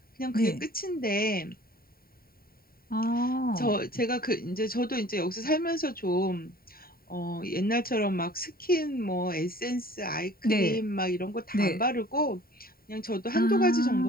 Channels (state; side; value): late; right; 0.43 ms